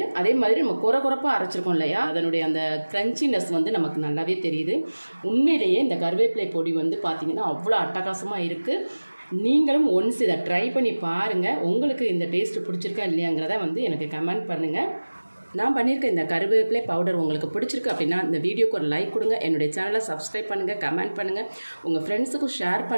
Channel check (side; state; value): both; inverted; correlation -1.00